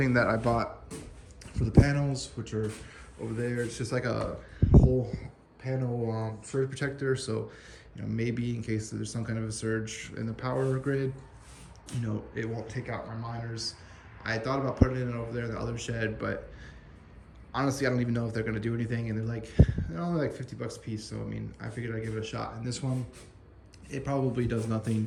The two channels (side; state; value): both; identical; correlation 1.00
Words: that I bought for the panels, which are over there, it's just like a whole panel surge protector. So you know, maybe in case there's some kind of a surge in the power grid, you know, it won't take out my miners. I thought about putting it over there in the other shed, but honestly, I don't even know if they're gonna do anything. And they're only like 50 bucks a piece. So I mean, I figured I'd give it a shot. And this one, it probably does nothing